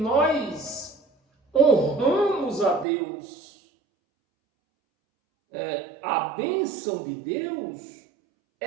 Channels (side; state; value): left; drops out; at 2.9 s